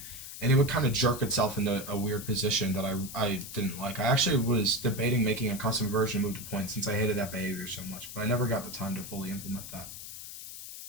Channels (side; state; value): left; noise; hiss, 11 dB below the sound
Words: and it would kind of jerk itself into a weird position that I didn't like. I actually was debating making a custom version of move to point since I hated that behavior so much, but I never got the time to fully implement that.